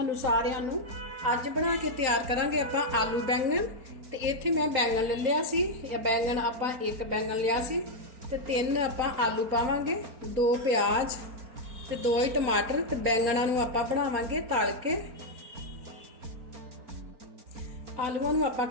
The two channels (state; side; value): late; left; 4.3 ms